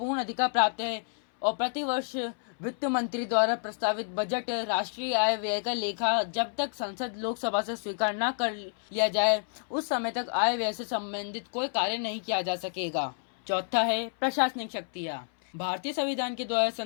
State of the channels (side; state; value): right; silent; 58 dB below the other